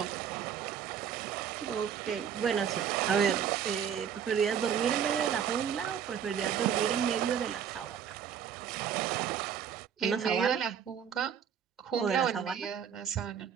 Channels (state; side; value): quieter; left; 8.2 dB